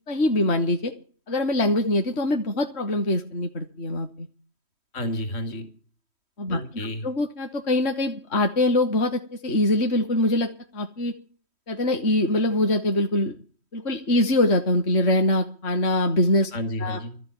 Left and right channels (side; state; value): right; late; 3.1 ms